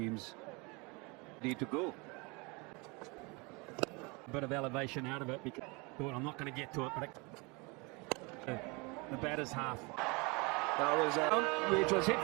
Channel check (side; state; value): left; quieter; 28.1 dB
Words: need to go. A bit of elevation out of it because I'm not going to get to it, but the batter's half. That was which was hit